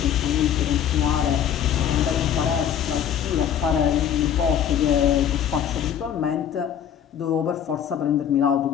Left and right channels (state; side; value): quieter; right; 9.2 dB